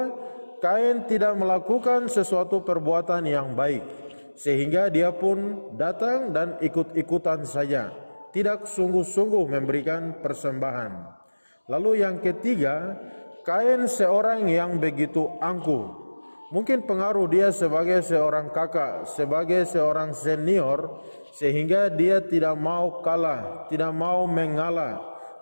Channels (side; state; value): both; inverted; correlation -1.00